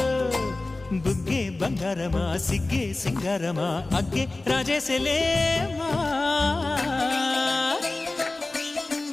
బుగ్గే బంగారమా సిగ్గే సింగారమా అగ్గే రాజేసలేమా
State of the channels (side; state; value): right; quieter; 3.1 dB